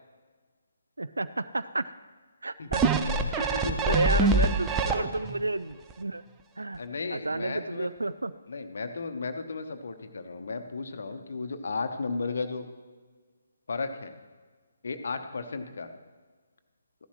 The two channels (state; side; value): inverted; both; correlation -0.34